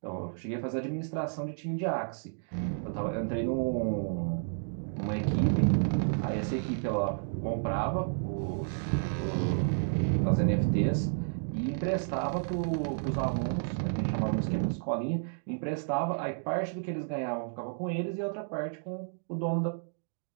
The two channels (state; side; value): silent; left; digital silence